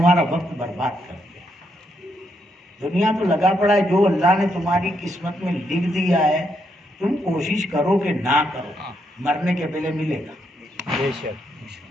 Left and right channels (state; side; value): normal; both; correlation 0.78